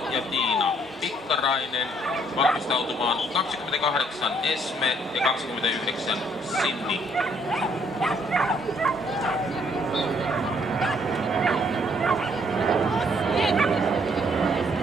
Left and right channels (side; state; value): both; normal; correlation 0.66